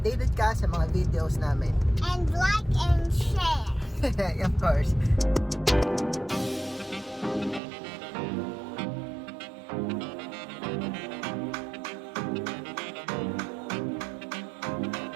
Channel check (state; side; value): drops out; left; at 7.6 s